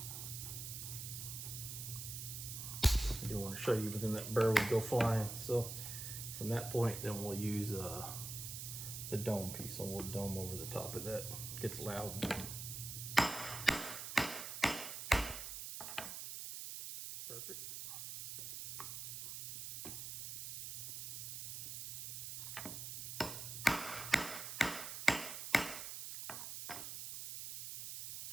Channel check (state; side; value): noise; right; hiss, 6 dB below the sound